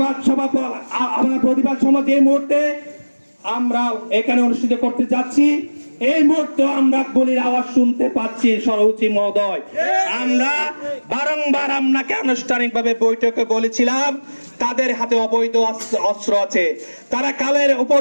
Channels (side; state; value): both; inverted; correlation -1.00